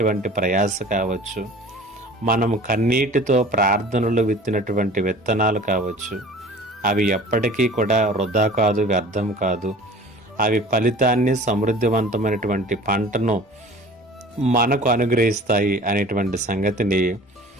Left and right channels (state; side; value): normal; both; correlation 0.44